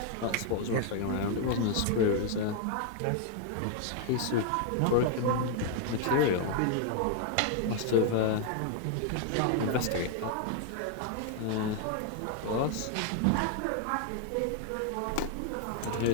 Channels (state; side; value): different; both; correlation 0.00